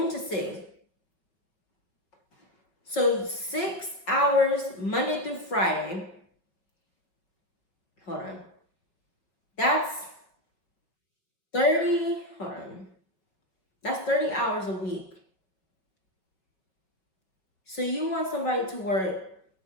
to 6. So 6 hours Monday through Friday. Hold on. That's 30. Hold on. That's 30 hours a week. So you want somebody to work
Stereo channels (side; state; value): right; late; 5.4 ms